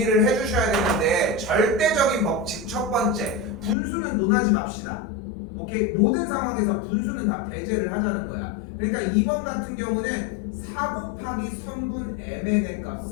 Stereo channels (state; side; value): drops out; right; at 3.8 s